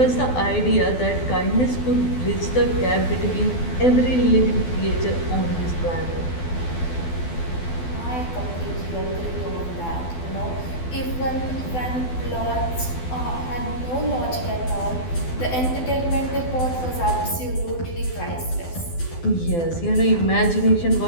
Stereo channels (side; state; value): right; late; 12 ms